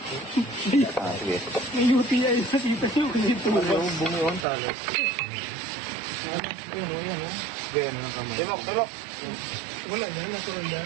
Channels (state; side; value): drops out; left; at 4.5 s